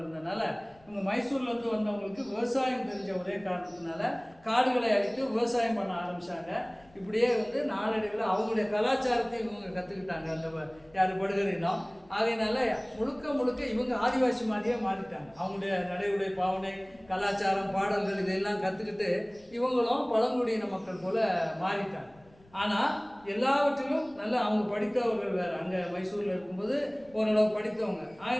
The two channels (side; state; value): left; noise; rumble, 28 dB below the sound